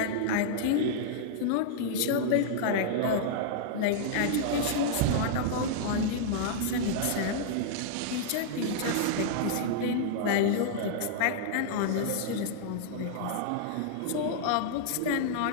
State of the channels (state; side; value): different; both; correlation -0.01